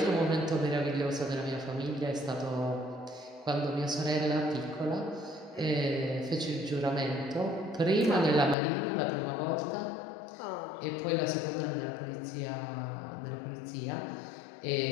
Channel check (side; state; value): right; drops out; at 8.6 s